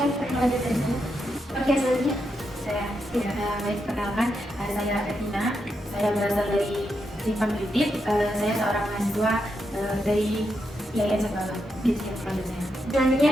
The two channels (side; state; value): both; normal; correlation 0.84